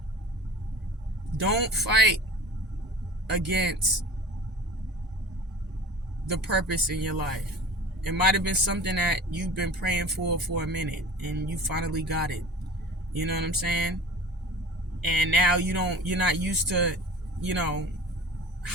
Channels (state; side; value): normal; both; correlation 0.40